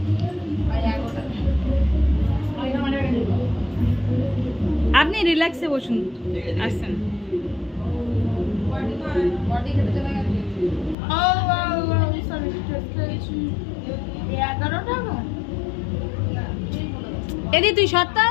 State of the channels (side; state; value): right; drops out; at 11.0 s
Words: আপনি রিল্যাক্সে বসুন, আসছেন। এদি তুই সত্য